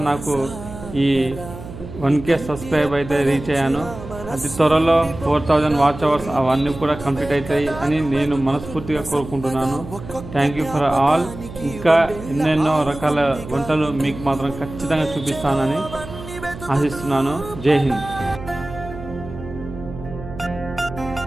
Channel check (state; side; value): noise; right; hum, 12 dB below the sound